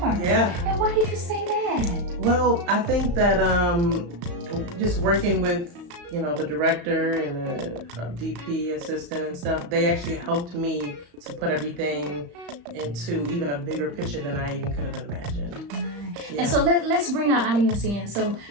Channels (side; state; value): left; late; 35 ms